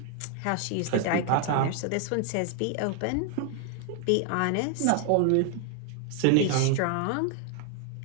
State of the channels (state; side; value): different; both; correlation 0.00